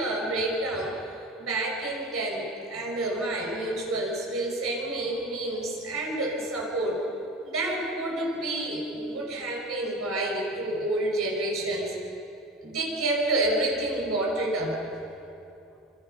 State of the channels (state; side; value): normal; both; correlation 0.31